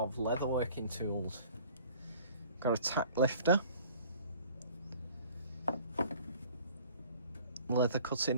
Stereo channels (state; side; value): inverted; both; correlation -0.50